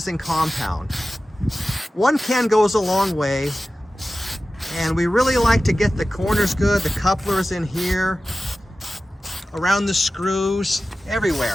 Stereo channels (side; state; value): both; normal; correlation 0.95